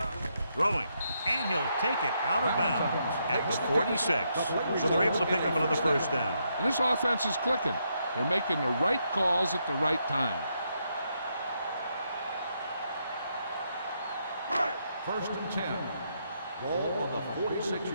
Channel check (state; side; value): inverted; both; correlation -0.78